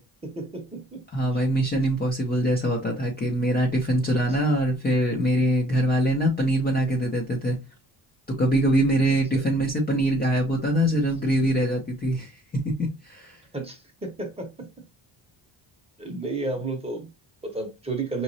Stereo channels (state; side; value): normal; both; correlation 0.61